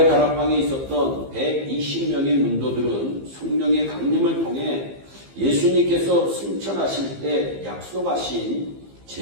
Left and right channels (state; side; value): late; left; 15 ms